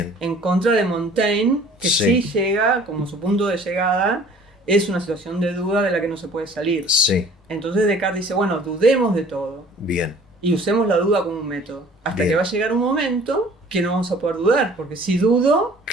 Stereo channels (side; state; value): both; normal; correlation 0.51